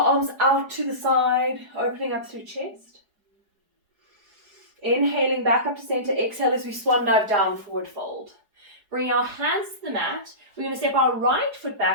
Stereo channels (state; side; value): late; left; 4.8 ms